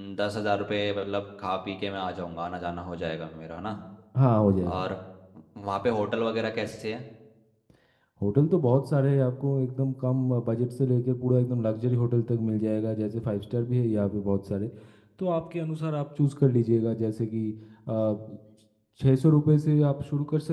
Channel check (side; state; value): both; identical; correlation 1.00